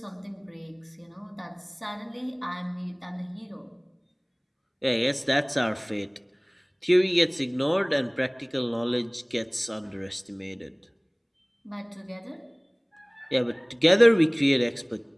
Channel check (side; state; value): both; identical; correlation 1.00